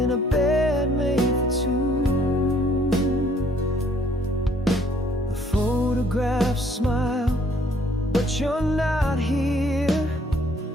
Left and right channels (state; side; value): normal; both; correlation 0.63